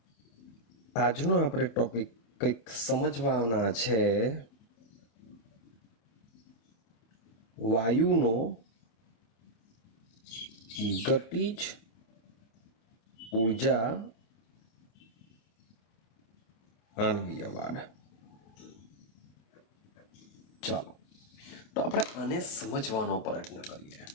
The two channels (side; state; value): right; late; 27 ms